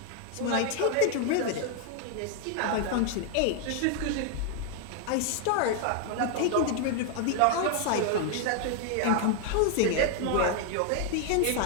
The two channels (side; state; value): both; different; correlation 0.00